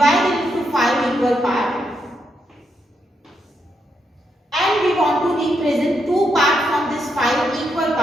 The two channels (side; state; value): both; normal; correlation 0.80